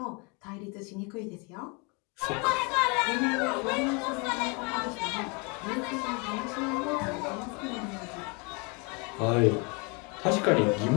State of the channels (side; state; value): right; quieter; 31.5 dB